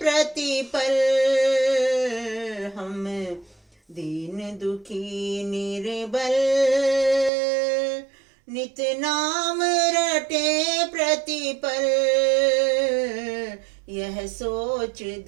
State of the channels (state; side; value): drops out; left; at 7.3 s